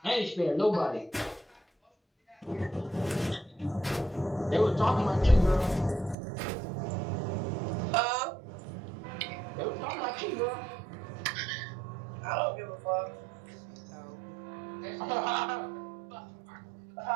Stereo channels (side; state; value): left; drops out; at 6.2 s